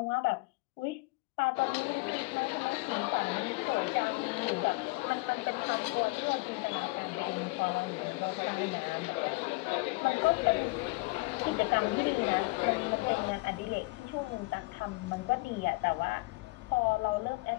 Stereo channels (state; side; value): quieter; right; 25.9 dB